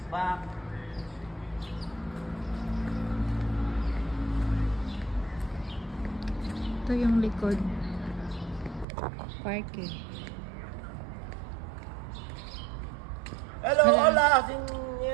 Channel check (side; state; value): left; drops out; at 8.8 s